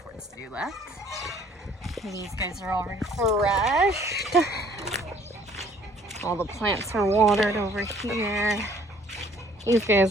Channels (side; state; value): both; normal; correlation 0.57